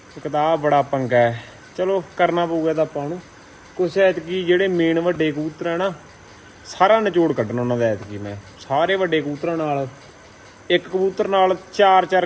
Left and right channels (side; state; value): both; identical; correlation 1.00